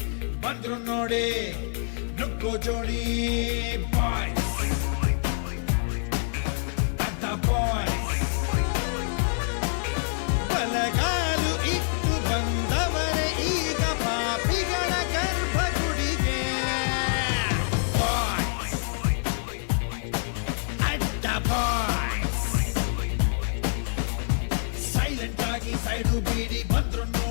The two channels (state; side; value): silent; right; digital silence